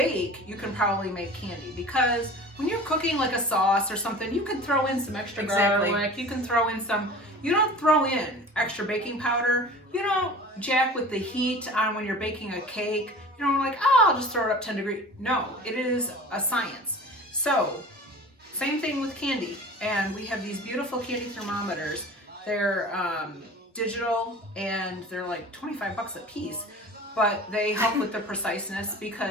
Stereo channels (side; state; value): both; normal; correlation 0.40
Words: you can probably make candy, because when you're cooking like a sauce or something, you can throw in some extra Exactly. garlic, you can throw in some, you don't throw in extra baking powder, you don't jack with the heat on when you're baking a cake, you don't like, oh, I'll just throw it up 10 degrees. No, it is a science. So, same thing with candy, and we have these beautiful candy thermometers. They're digital, and they're like 25 bucks a piece, but they help with the preciseness